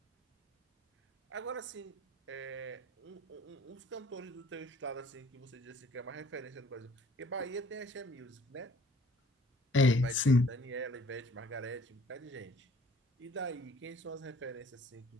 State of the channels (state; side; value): normal; both; correlation 0.55